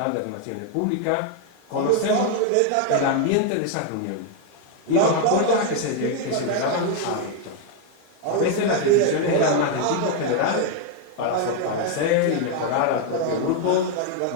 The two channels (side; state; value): both; different; correlation 0.01